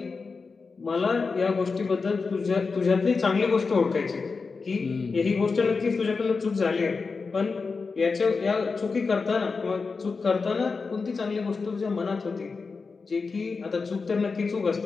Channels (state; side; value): quieter; right; 4.6 dB